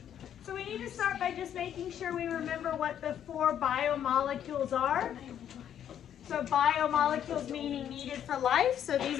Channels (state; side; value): quieter; right; 9.8 dB